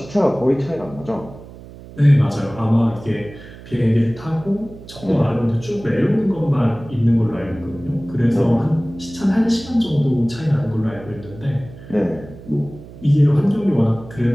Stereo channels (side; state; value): right; noise; hum, 17 dB below the sound